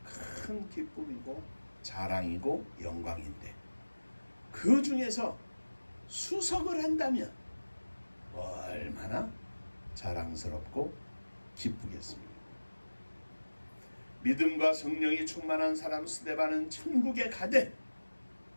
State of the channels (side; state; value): both; inverted; correlation -1.00